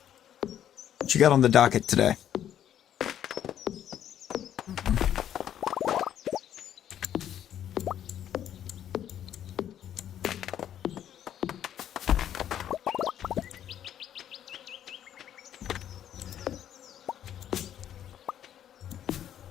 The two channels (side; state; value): right; quieter; 10.4 dB